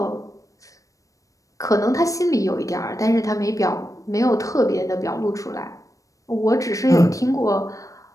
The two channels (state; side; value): late; right; 0.16 ms